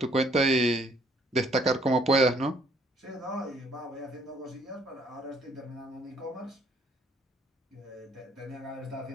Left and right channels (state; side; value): normal; both; correlation 0.64